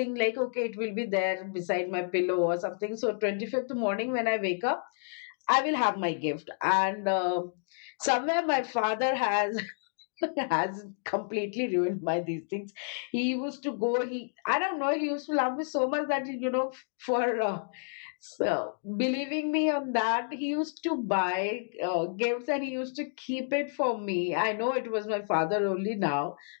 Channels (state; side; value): silent; right; digital silence